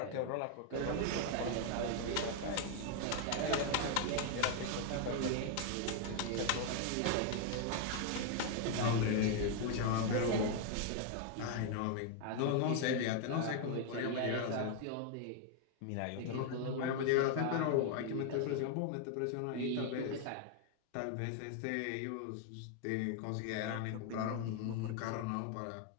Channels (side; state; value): both; different; correlation 0.00